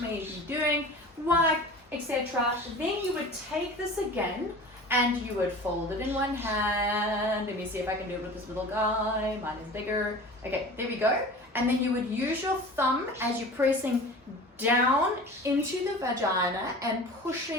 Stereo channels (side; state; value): both; normal; correlation 0.38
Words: may be doing, wipe, etc. Then you would take this again and you would fold it in one hand. Let me see if I can do it with this little guy. Mine is bigger. Okay, there we go. And then you would use your thumb as you're pressing down into the vagina and